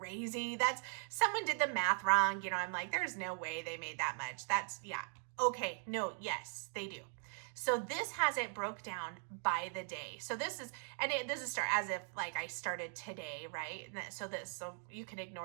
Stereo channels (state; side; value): silent; left; 51 dB below the other